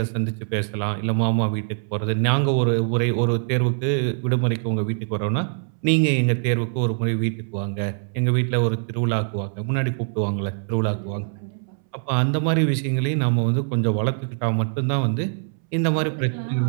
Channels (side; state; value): left; silent; 62 dB below the other